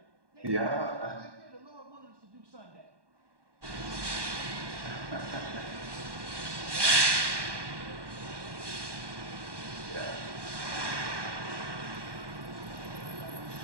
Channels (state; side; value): late; left; 1.2 ms